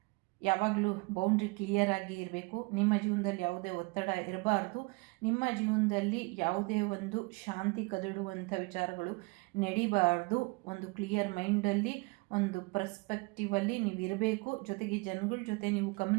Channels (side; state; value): left; quieter; 27.5 dB